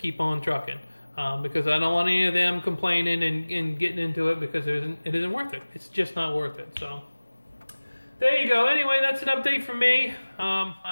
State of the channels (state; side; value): inverted; both; correlation -1.00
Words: on trucking. Because I don't want any of them complaining and getting into it because it isn't worth it. It's just not worth it. So there you go. Anyway, that's an update from me.